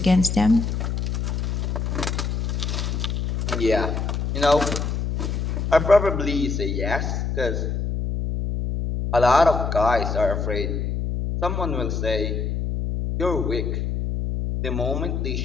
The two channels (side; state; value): left; noise; hum, 1 dB below the sound